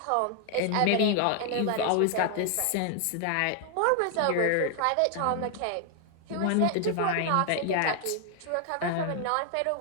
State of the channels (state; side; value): different; both; correlation 0.00